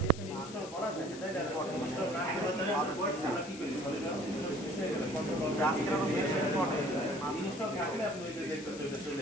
এখানে ইনস্টল করা থাকে তাহলে ইনস্টল না করে তাহলে আমরা কি করি, সলিডওয়ার্কস ইনস্টল শেষ হয়ে গেলে কন্ট্রোল ইনস্টল থাকলে আপনি ওই যে দেখতে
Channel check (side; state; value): left; noise; hiss, 15 dB below the sound